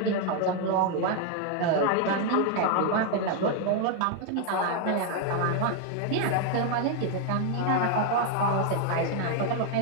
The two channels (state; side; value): different; both; correlation 0.00